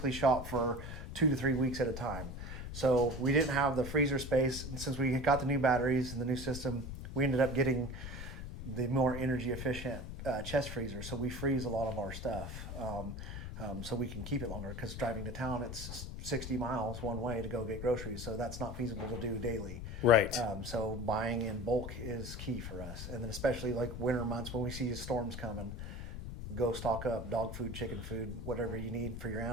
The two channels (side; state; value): left; noise; rumble, 7 dB below the sound